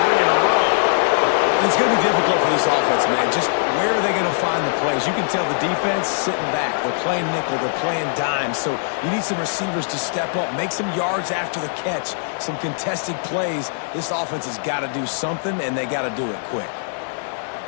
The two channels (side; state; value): right; silent; 56 dB below the other